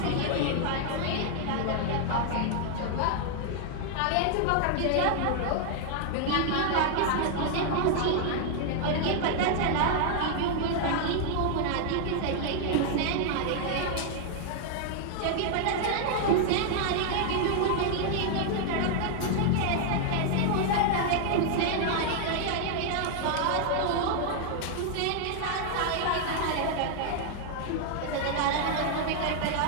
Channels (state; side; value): different; both; correlation 0.00